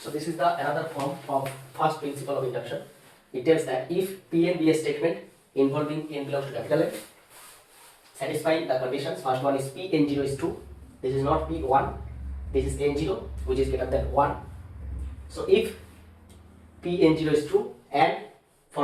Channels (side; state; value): both; identical; correlation 1.00